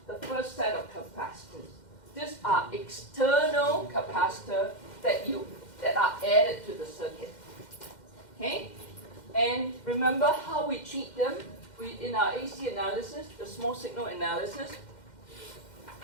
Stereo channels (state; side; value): late; right; 2.1 ms